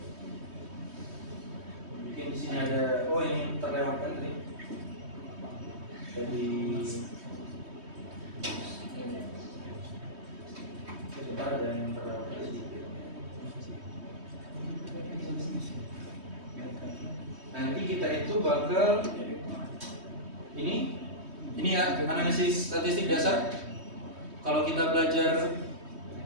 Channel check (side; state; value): left; late; 3.2 ms